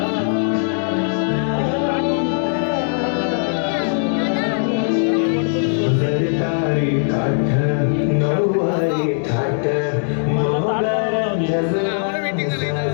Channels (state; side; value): silent; right; digital silence